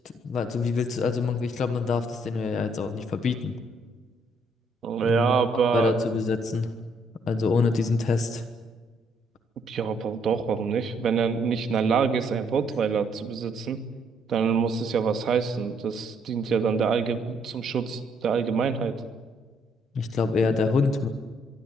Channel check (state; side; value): normal; both; correlation 0.69